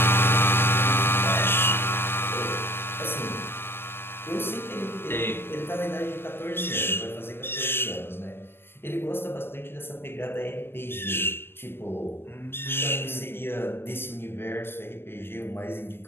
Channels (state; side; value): late; right; 0.11 ms